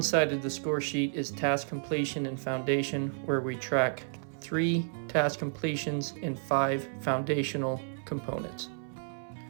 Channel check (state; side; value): silent; left; 57 dB below the other